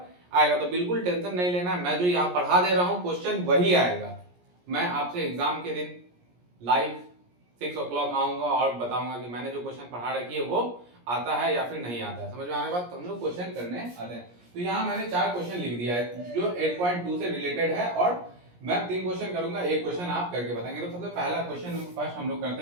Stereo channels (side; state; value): left; late; 17 ms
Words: आएगा। तो बिल्कुल टेंशन नहीं लेना, मैं जो यहाँ पढ़ा दे रहा हूँ क्वेश्चन वही आएगा। मैं आपसे एग्जाम के दिन लाइव 6 o'clock आऊंगा और बताऊंगा कि मैंने जो क्वेश्चन पढ़ा रखी है वो आता है या फिर नहीं आता है। समझ में आने बाद तो हम लोग क्वेश्चन करने आते हैं। तो यहाँ मैंने 4 क्वेश्चन लिख दिया है जो 8.2 से रिलेटेड है, और मैं 3 क्वेश्चन करूंगा, एक क्वेश्चन आप करके बताएंगे। तो सबसे पहला क्वेश्चन फर्स्ट हम लोग